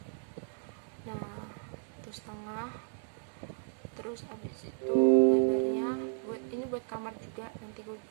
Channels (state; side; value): silent; left; digital silence